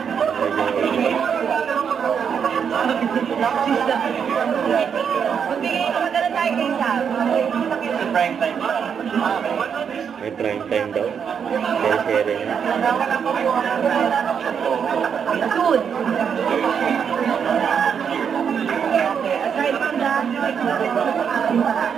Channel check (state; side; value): quieter; left; 7.2 dB